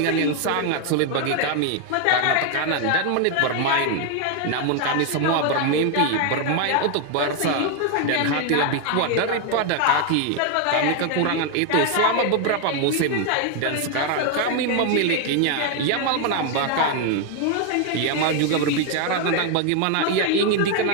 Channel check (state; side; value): different; both; correlation 0.01